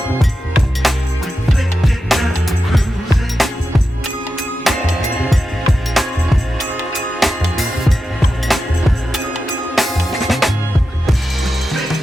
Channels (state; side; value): normal; both; correlation 0.90